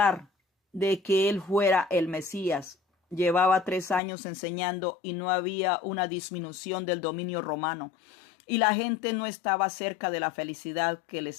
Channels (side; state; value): right; drops out; at 4.0 s